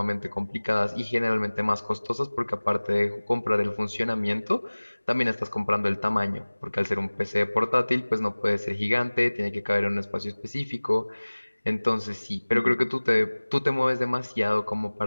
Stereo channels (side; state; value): both; inverted; correlation -1.00